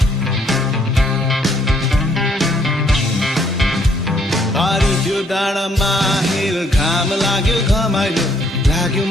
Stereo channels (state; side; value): normal; both; correlation 0.67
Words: पारी त्यो डाँडामा हिल घाम लाग्यो घमाइलो लाग्यो